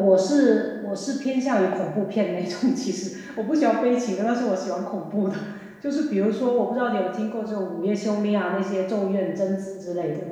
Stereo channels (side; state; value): both; identical; correlation 1.00